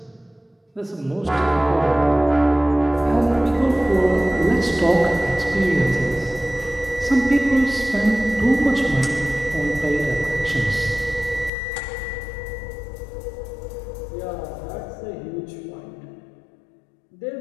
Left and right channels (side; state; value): right; drops out; at 11.5 s